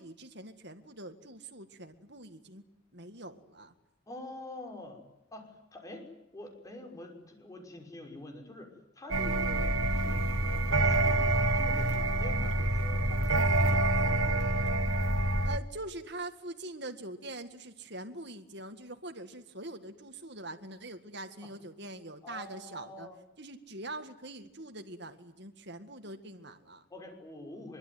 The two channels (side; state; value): both; normal; correlation 0.25